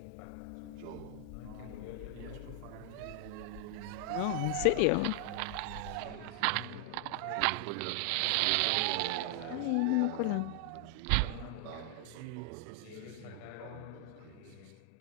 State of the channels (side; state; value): both; different; correlation 0.00